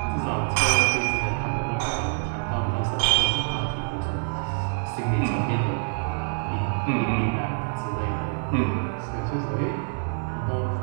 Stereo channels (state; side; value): silent; left; digital silence